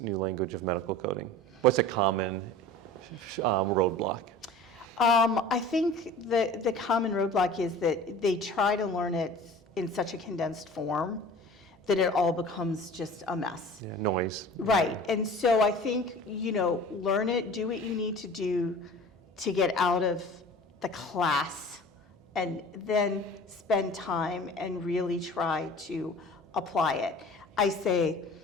new language of medical coding? What's a common roadblock? I think the common roadblock is that they try to learn it in such a condensed form that it all becomes just a mess. Yeah, noise. Right, and so I think, learn it, do what you need to do to get out of the class, and then spend time and really try to apply it. I say,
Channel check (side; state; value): both; normal; correlation 0.42